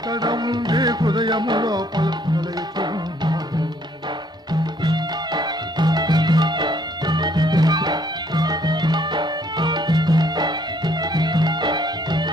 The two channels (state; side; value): normal; both; correlation 0.65